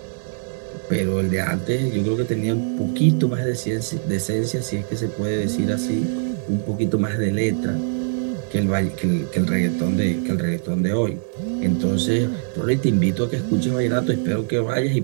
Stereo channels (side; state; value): left; silent; 64 dB below the other